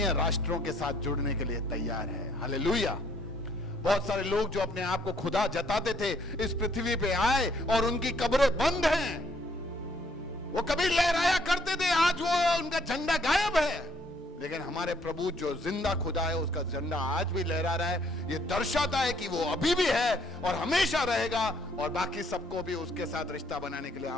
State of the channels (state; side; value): normal; both; correlation 0.65